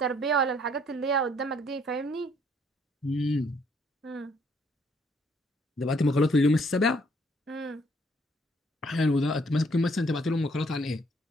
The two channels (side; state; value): both; normal; correlation 0.66